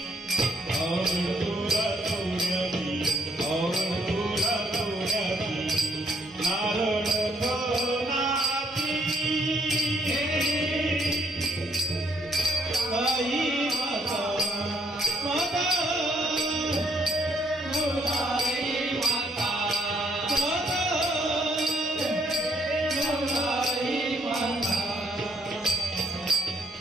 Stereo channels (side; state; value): both; normal; correlation 0.68